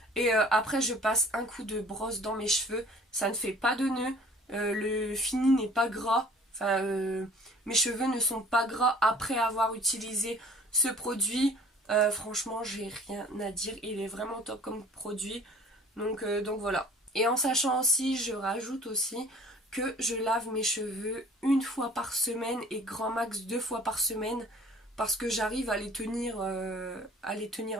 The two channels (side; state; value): both; normal; correlation 0.50